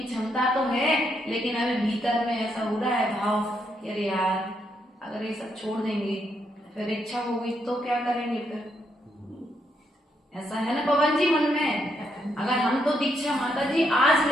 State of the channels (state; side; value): normal; both; correlation 0.77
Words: क्षमता तो है, लेकिन अभी भीतर में ऐसा हो रहा है भाव कि अरे यार अगर ये सब छोड़ देंगे फिर इच्छा होगी तो क्या करेंगे फिर, ऐसा है ना पवन जी मन में। अगर हम तो दीक्षा माता जी आज